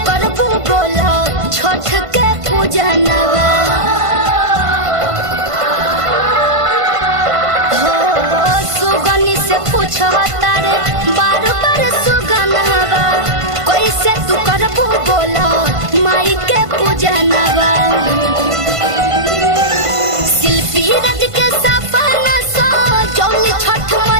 करबू बोला छठ के पूजनवा। हो सुगनी से पूछो तारे बार बार सुगनावा कैसे तू करबू बोला माई के पूजनवा। शिल्पी रज के सपना सो जौली छठ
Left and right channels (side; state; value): left; late; 1.5 ms